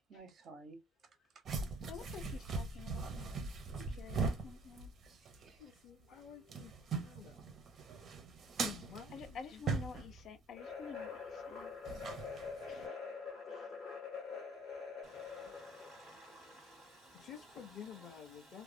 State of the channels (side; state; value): both; normal; correlation 0.55